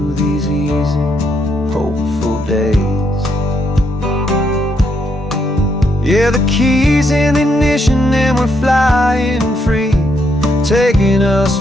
these easy, hopeful days. Yeah, the keys in the ignition and we're flying free, taking us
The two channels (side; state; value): both; normal; correlation 0.76